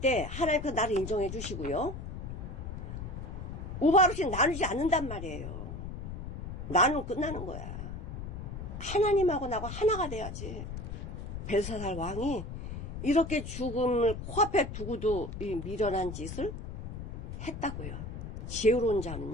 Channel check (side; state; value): left; noise; rumble, 7 dB below the sound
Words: 하나님께서 나를 인정해 주시고요. 우바르신 나누지 않는단 말이에요. 나누면 끝나는 거야. 하나님하고 나하고 하나가 돼야지. 벨사살 왕이 이렇게 죽음을 코앞에 두고도 이 미련한 짓을 했다고요. 지혜로운